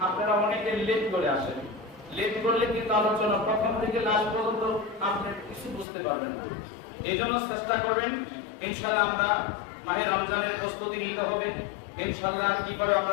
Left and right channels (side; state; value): right; drops out; at 5.9 s